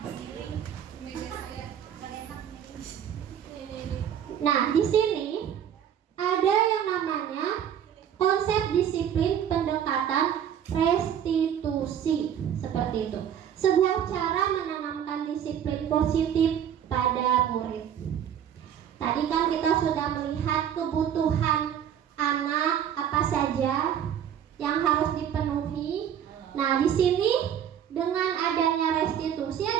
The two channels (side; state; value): left; quieter; 9.3 dB